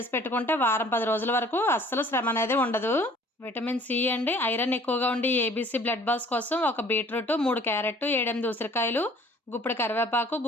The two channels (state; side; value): normal; both; correlation 0.53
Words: పెట్టుకుంటే వారం, 10 రోజుల వరకు అస్సలు శ్రమ అనేది ఉండదు. విటమిన్ సి అండి, ఐరన్ ఎక్కువగా ఉండి ఏబీసీ బ్లడ్ బాల్స్ కోసం ఒక బీట్రూట్, 3 క్యారెట్, 7, 8 ఉసిరికాయలు, గుప్పెడు కరివేపాకు,